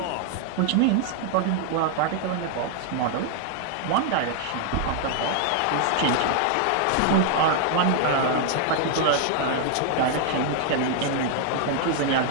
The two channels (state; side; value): different; both; correlation 0.00